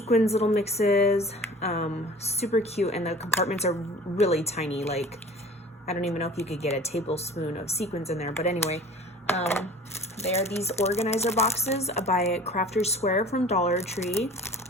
little mixes. Super cute, and the compartments are really tiny. Like, I don't even know if you could get a tablespoon of sequins in there, but anyway, they are these organizer boxes by Crafter's Square from Dollar Tree.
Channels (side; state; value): both; normal; correlation 0.45